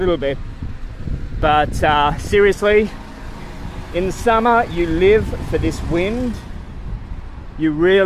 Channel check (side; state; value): both; identical; correlation 1.00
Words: bit. But seriously, in the summer you live for this wind. You